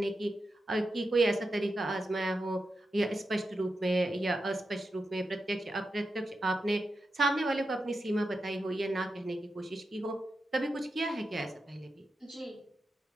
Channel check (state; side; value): normal; both; correlation 0.89